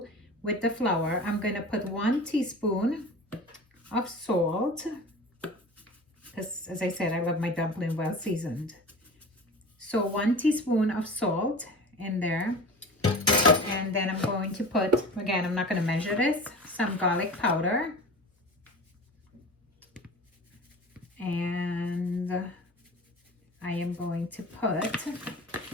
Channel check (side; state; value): both; normal; correlation 0.36